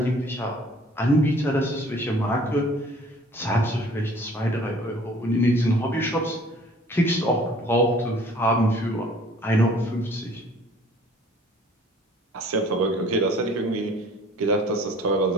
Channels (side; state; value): both; normal; correlation 0.53